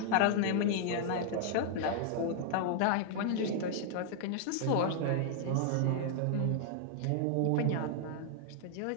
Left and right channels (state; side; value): different; both; correlation 0.00